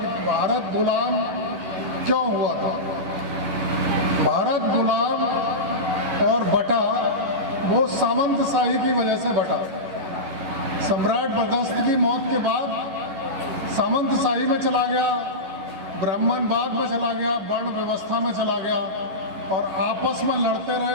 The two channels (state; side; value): late; left; 11 ms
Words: भारत गुलाम क्यों हुआ था। भारत गुलाम और बटा वो सामंतशाही की वजह से बटा। सम्राट बर्दस्त की मौत के बाद सामंतशाही में चला गया, ब्राह्मणवाद में चला गया, वर्ण व्यवस्था में चला गया, और आपस में लड़ते